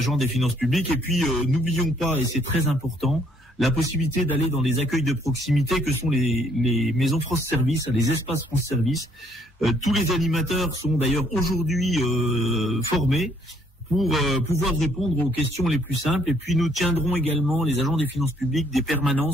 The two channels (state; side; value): normal; both; correlation 0.66